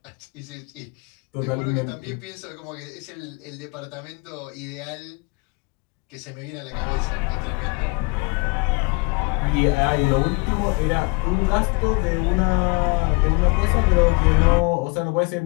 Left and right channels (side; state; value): right; quieter; 28.7 dB